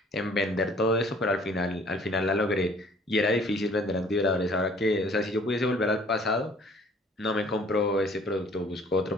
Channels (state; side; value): normal; both; correlation 0.55